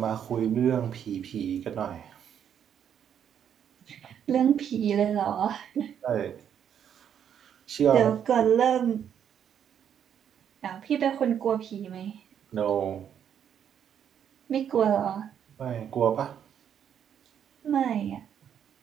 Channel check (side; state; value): left; quieter; 8.8 dB